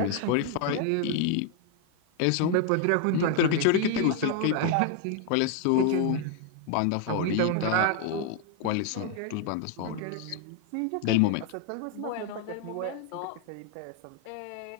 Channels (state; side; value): different; both; correlation 0.00